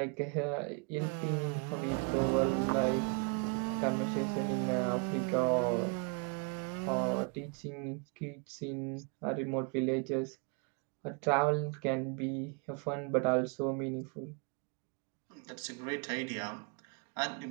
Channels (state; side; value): quieter; left; 33.6 dB